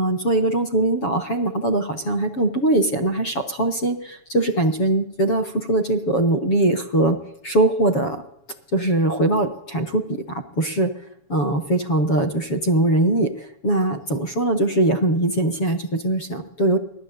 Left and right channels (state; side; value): late; right; 7.2 ms